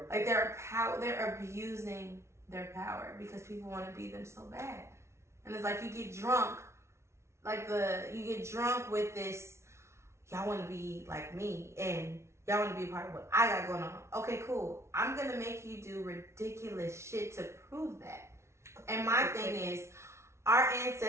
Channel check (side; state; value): left; late; 0.13 ms